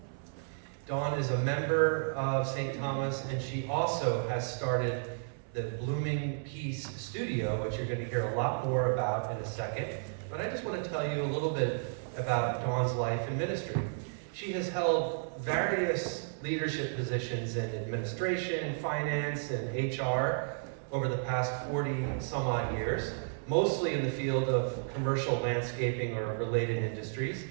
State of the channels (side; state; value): left; silent; 56 dB below the other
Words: Daune is a member of St. Thomas, and she also has started the Blooming Peace Studio, which you're going to hear a lot more about in a second. But I just want to tell you a little bit about Daune's life and ministry. She has held various leadership positions in administration, finance, and HR over the past 40 some odd years, mostly in the field of commercial landscaping or related industries.